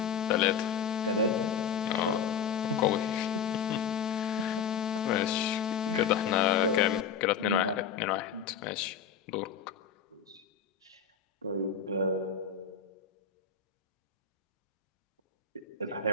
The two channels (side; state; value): right; quieter; 7.0 dB